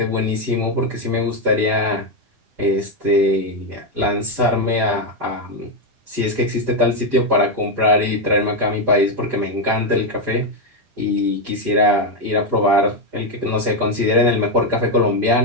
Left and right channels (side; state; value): left; late; 9.4 ms